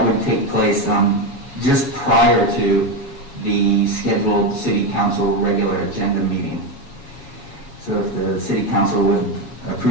would take place just prior to the scheduled City Council regular agenda meeting. So if the City Council would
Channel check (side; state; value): right; late; 7.2 ms